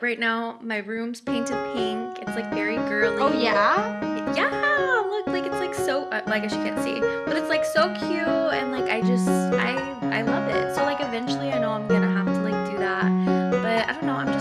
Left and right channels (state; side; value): identical; both; correlation 1.00